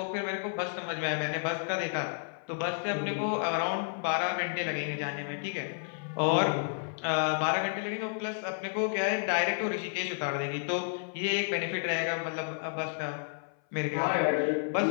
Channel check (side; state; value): right; silent; 57 dB below the other